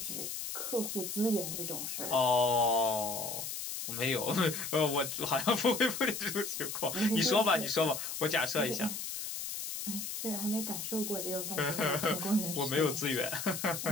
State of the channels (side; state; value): left; noise; hiss, 5 dB below the sound